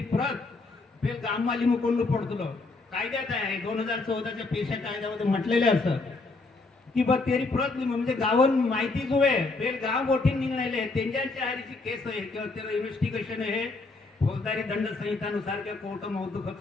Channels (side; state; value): right; quieter; 3.6 dB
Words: प्रत पे गाम माली मुकोंड पडतलो कायद्यात आहे 2014 च्या पैसा कायद्यामध्ये म्हटलेले असं की बा तेरी प्रत म्हणजे गावन माहिती जो आहे बेल गाव गोठीन निघणाले त्यांच्या हरीची केस आहे किंवा तेरा इन्व्हेस्टिगेशन आहे फौजदारी दंड संहितानुसार के कोर्ट मौदूक